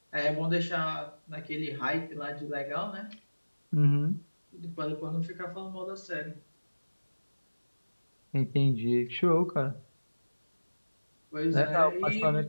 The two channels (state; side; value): inverted; both; correlation -1.00